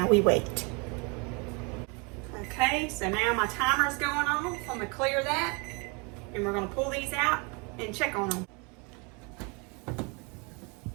we wait. Okay, so now my timer's going on. So I'm going to clear that. And we're going to pull these out and check on them.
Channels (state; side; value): quieter; left; 31.6 dB